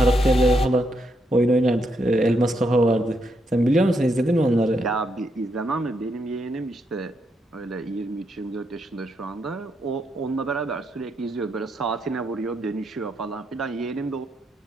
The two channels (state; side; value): normal; both; correlation 0.79